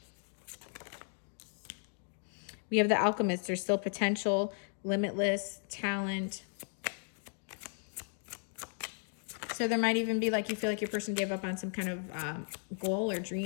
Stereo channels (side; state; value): right; silent; 54 dB below the other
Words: We have the alchemist. There's still potential, limitless talent. So there might even be like you feel like your person gave up on some kind of goal or